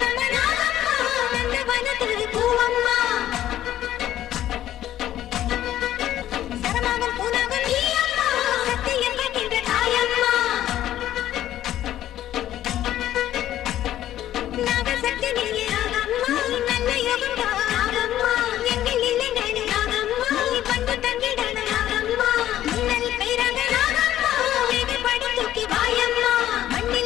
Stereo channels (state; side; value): quieter; right; 12.6 dB